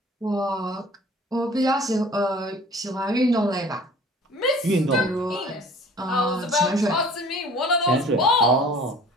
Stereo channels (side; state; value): both; normal; correlation 0.48